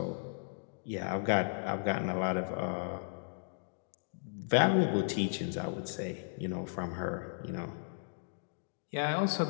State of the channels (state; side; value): silent; right; digital silence